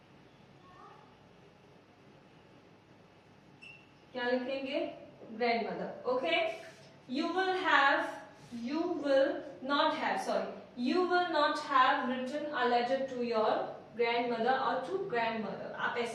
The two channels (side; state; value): both; identical; correlation 1.00